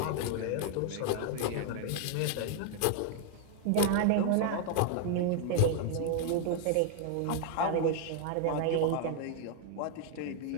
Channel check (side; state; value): both; different; correlation 0.00